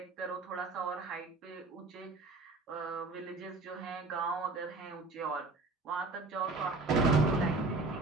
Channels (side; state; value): left; quieter; 3.4 dB